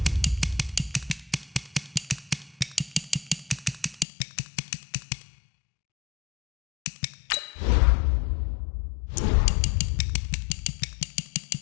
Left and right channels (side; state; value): right; drops out; at 4.0 s